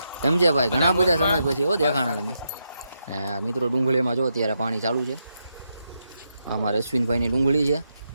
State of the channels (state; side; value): inverted; both; correlation -0.83